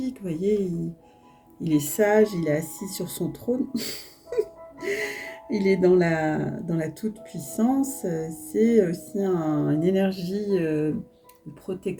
vous voyez, il est sage, il est assis sur son trône. Il est dans la toute-puissance. C'est aussi une énergie de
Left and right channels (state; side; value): identical; both; correlation 1.00